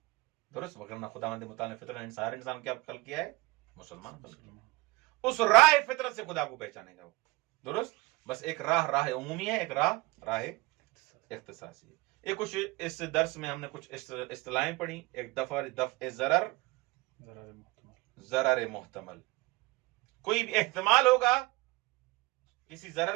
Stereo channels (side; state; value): left; quieter; 22.0 dB